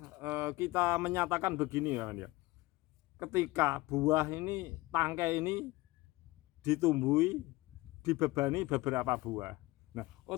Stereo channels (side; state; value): right; quieter; 20.7 dB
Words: kita menyatakan begini, kawan ya. Ketika buah ini, tangkai ini ditumbuhi, dibebani beberapa buah. Nah,